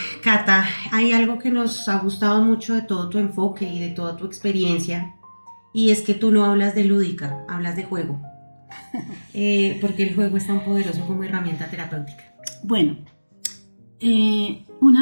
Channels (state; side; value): inverted; both; correlation -1.00